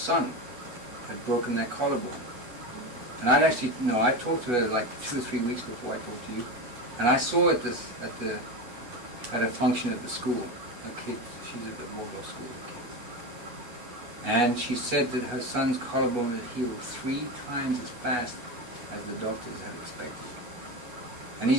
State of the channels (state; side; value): late; left; 8.2 ms